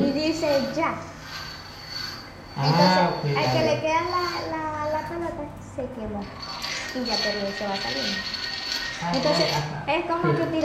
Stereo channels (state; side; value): identical; both; correlation 1.00